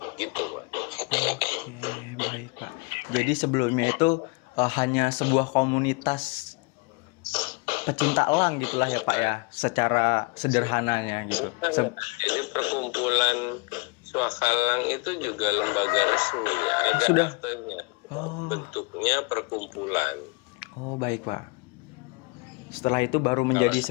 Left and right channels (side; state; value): right; quieter; 29.4 dB